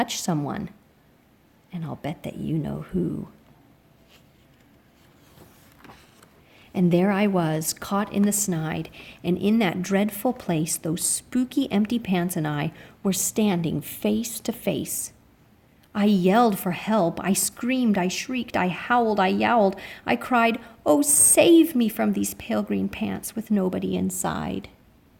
someone. And I'll bet that you know who. And there I was, caught in the snide, and in that dreadful place, those spooky empty pants and I were standing face to face. I yelled for help. I screamed, I shrieked, I howled, I yowled. I cried, oh, save me from these pale green pants with nobody inside.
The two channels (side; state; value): both; identical; correlation 1.00